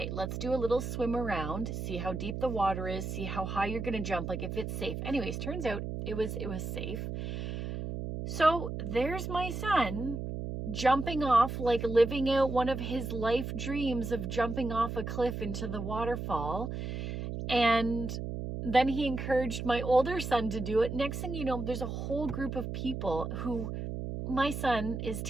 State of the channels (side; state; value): right; noise; hum, 5 dB below the sound